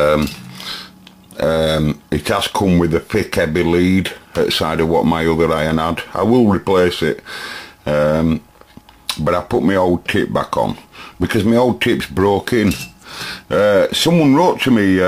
it has come with a thick heavy lead outside of what my other iron had. I will replace it, but I put my old tip back on because my old tip's broke in. Someone wrote to me,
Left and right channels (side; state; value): both; identical; correlation 1.00